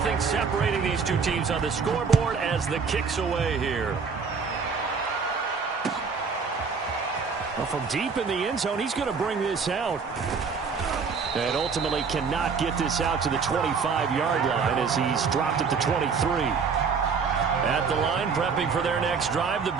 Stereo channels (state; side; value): quieter; left; 5.5 dB